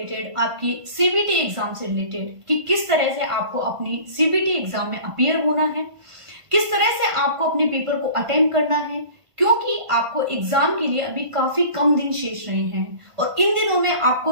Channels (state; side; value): late; left; 1.5 ms